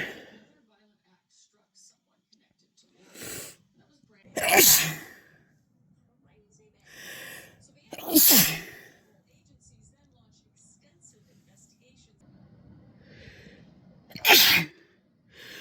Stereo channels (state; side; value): identical; both; correlation 1.00